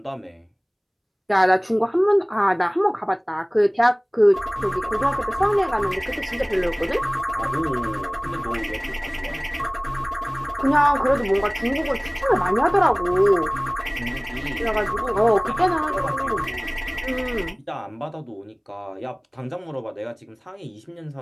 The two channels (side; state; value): both; identical; correlation 1.00